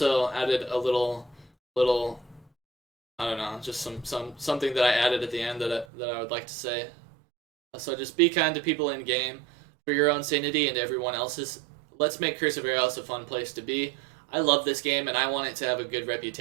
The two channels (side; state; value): left; drops out; at 5.9 s